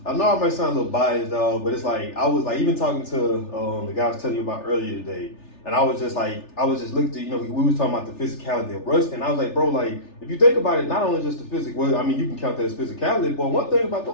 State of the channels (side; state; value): right; late; 3.4 ms